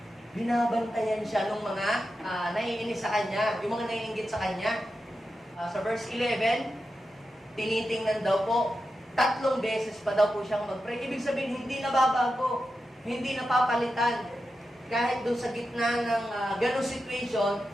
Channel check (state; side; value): normal; both; correlation 0.90